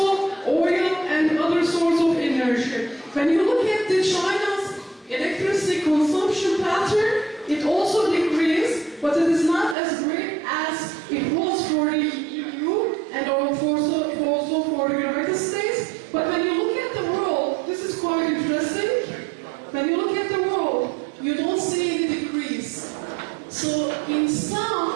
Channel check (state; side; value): drops out; left; at 9.8 s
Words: oil and other sorts of energy. When you look at the China's electricity consumption pattern, it also decreased, but it is not as great as it was for the EU and also for the United States. But when you look at the world, this is quite interesting. When you look at the world, you don't see any decrease. So in